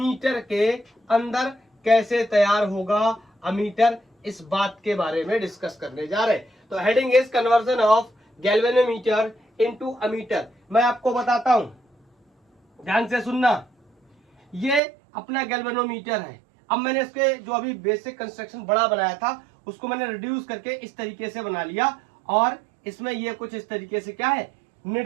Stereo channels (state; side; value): drops out; left; at 14.8 s